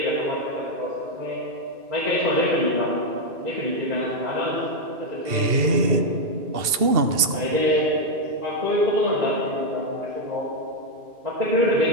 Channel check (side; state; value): left; late; 2.7 ms